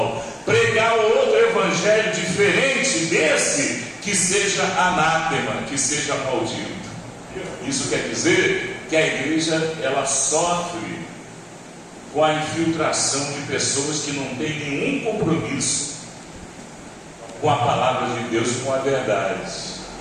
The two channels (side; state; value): both; identical; correlation 1.00